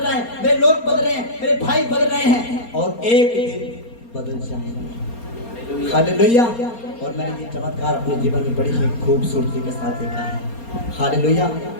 है, मेरे लोग बदल रहे हैं, मेरे भाई बदल रहे हैं और एक दिन बदल जाएंगे। हालेलुया। और मैंने ये चमत्कार अपने जीवन में बड़ी ही खूबसूरती के साथ देखा है। हालेलुया।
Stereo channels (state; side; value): late; right; 4.3 ms